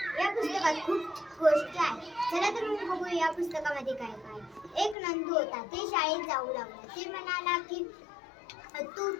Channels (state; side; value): drops out; right; at 5.0 s